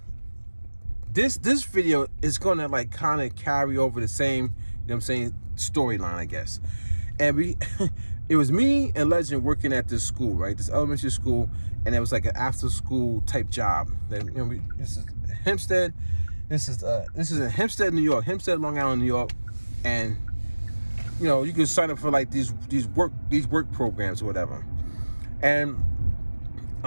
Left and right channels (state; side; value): inverted; both; correlation -1.00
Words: this video is gonna like kind of carry over the same, you know what I'm saying, storyline, I guess. And it was me and Legend working at this school, right? This elementary school, and it was like an after school type job. That, you know, this is Hempstead. This is in Hempstead, New York, Hempstead, Long Island, New York. And you know, you can sign up for like these work programs or whatever. And